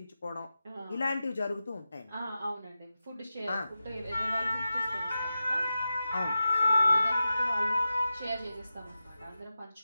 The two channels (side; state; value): both; inverted; correlation -0.93